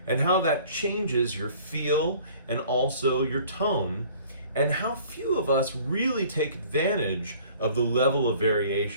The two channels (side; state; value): both; inverted; correlation -0.51